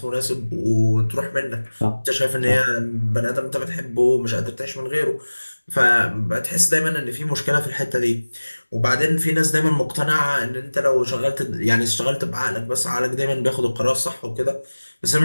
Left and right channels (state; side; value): inverted; both; correlation -1.00